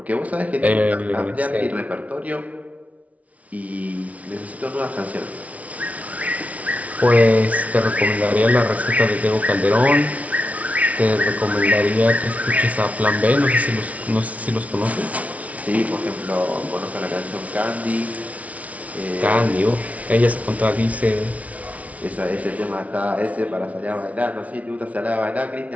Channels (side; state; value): left; late; 0.068 ms